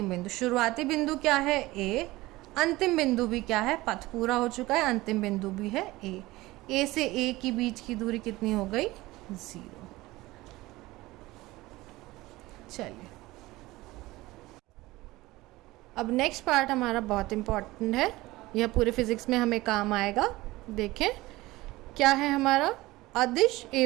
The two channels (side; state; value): left; quieter; 19.3 dB